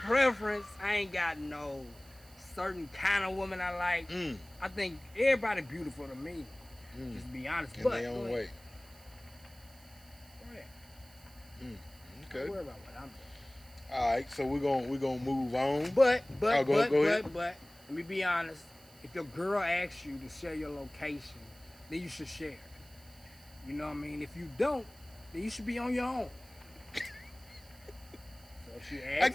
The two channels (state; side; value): noise; right; hiss, 24 dB below the sound